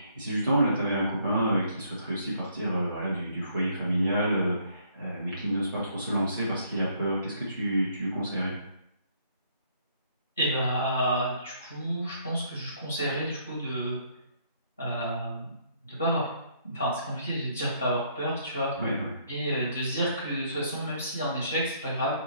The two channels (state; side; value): inverted; both; correlation -0.66